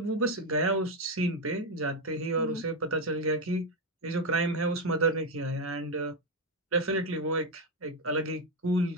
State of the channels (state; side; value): normal; both; correlation 0.07